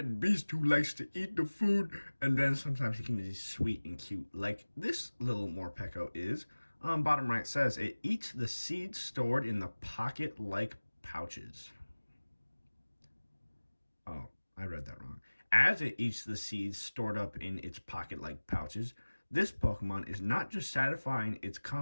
beast who likes to eat the food, and then sometimes he can be sweet and cute, like this little Morpeko is. Bottom right says, it eats the seeds stored in the pocket-like pouches. Oh, I read that wrong. As it eats the seeds stored up in its pocket-like pouches, this Pokemon is not just satisfying its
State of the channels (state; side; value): inverted; both; correlation -1.00